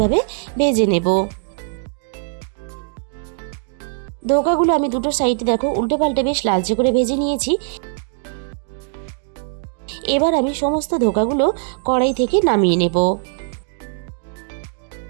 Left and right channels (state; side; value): silent; left; digital silence